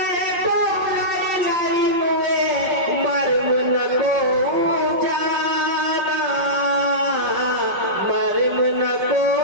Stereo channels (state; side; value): late; left; 5.3 ms